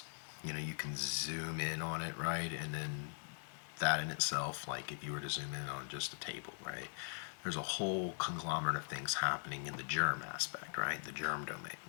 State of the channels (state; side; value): silent; right; digital silence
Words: you can zoom in on it, right? And then that in itself, like if you were to zoom in on just a table, right, there's a whole conglomerate of things happening in the germ aspect, right? The germ domain,